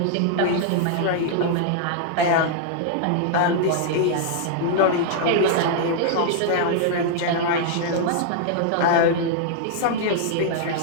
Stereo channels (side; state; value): both; different; correlation -0.01